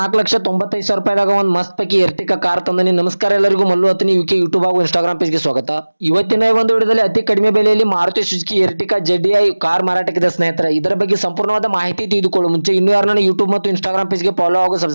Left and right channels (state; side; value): inverted; both; correlation -1.00